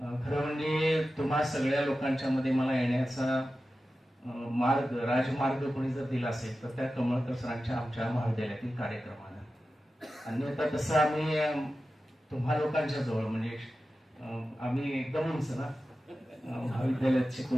खरं म्हणजे तुम्हा सगळ्या लोकांच्या मध्ये मला येण्याचा मार्ग, राजमार्ग कोणी जर दिला असेल तर त्या कमळकर सरांच्या आमच्या महाविद्यालयातील कार्यक्रमानं. अन्यथा तसं आम्ही तुम्हा लोकांच्या जवळ म्हणजे आम्ही एकदम उंच ना, महाविद्यालयात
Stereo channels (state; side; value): normal; both; correlation 0.93